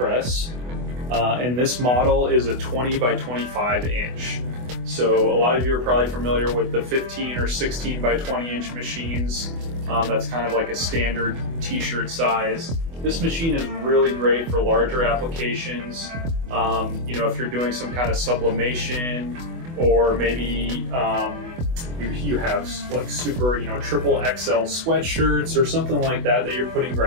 and this model is a 20 by 25 inch. So a lot of you are probably familiar with the 15 or 16 by 20 inch machines. That's kind of like a standard t-shirt size. This machine is really great for larger applications. If you're doing some kind of sublimation, or maybe you have like super, triple XL sweatshirts or something like that that you're putting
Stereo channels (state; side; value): late; left; 24 ms